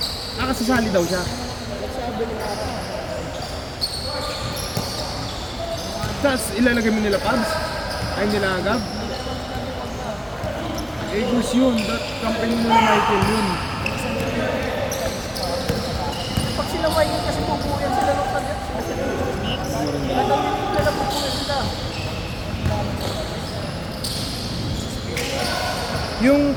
Ah, kasasali daw siya. Tapos ilalagay mo nila Pabs? Ay nila Gab? Eagles yun. That company mo na Michael yun. pag sila Michael kasi pupuyan sila ng tagat. Kadang yung nila pupuyan sila. Yung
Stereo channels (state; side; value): identical; both; correlation 1.00